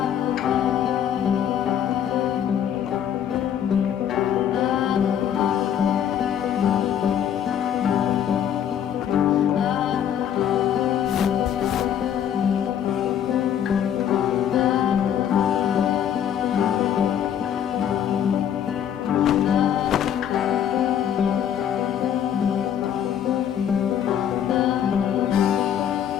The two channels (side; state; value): right; quieter; 9.4 dB